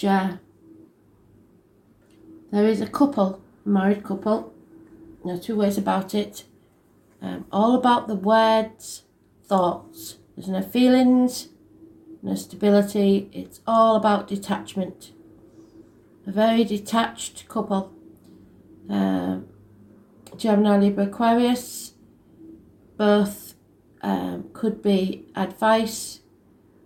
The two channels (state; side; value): identical; both; correlation 1.00